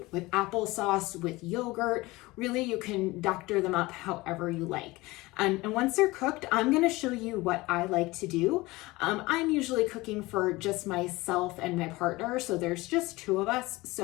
with applesauce, with yogurt. Really, you can doctor them up however you like. And once they're cooked, I'm gonna show you what I like to do. I'm usually cooking for just myself and my partner, so there's just 2 of us.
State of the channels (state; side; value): quieter; right; 21.0 dB